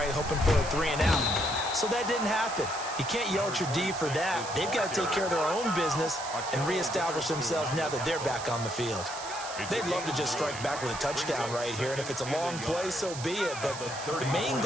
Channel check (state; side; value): noise; right; hiss, 10 dB below the sound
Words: Hoping for a 3 and out. So that didn't happen. You can't yell at your D for that. They've got to take care of their own business and reestablish themselves now that they're back on the field. They'd love to just strike back with a touchdown right here, and if it's a long play, so be it. But the main